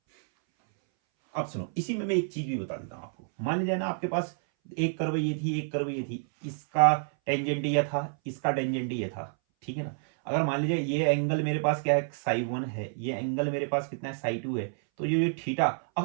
अब सुनो, इसी में मैं एक चीज भी बता देता हूं आपको। मान लीजिए ना आपके पास एक कर्व ये थी, एक कर्व ये थी, इसका टेंजेंट ये था, इसका टेंजेंट ये था, ठीक है ना। अगर मान लीजिए ये एंगल मेरे पास क्या है, साई 1 है, ये एंगल मेरे पास कितना है, साई 2 है, तो ये थीटा,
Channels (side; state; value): left; silent; 59 dB below the other